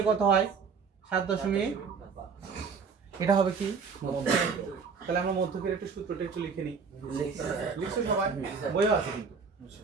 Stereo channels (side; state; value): left; quieter; 5.5 dB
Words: কত হয় 7.5। এটা হবে কি মধ্যক। তাহলে আমরা মধ্যকের একটু সূত্রটা একটু লিখে নিই। লিখছো সবাই, বইও আছে কিন্তু।